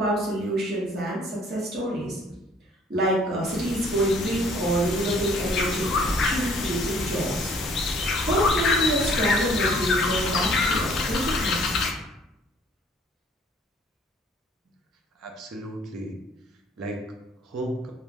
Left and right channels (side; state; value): both; normal; correlation 0.58